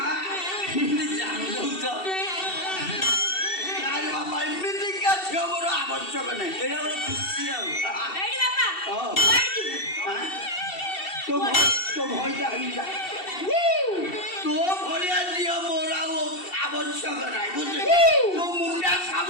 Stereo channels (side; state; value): right; late; 2.7 ms